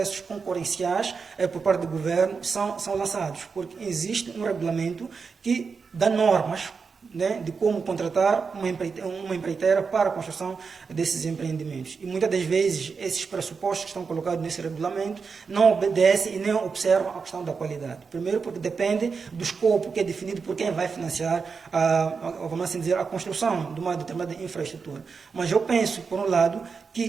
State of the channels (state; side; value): quieter; left; 5.2 dB